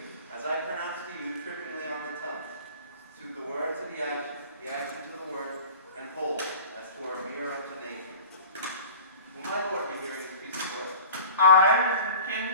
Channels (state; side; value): inverted; both; correlation -0.41